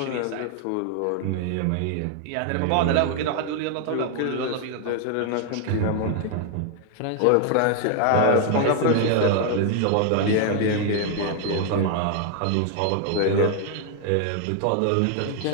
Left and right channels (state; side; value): different; both; correlation 0.00